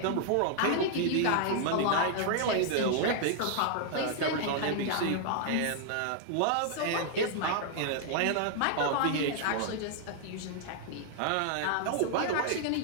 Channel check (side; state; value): both; different; correlation -0.01